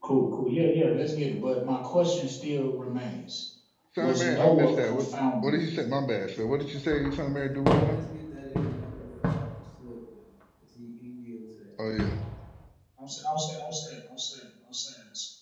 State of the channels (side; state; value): both; identical; correlation 1.00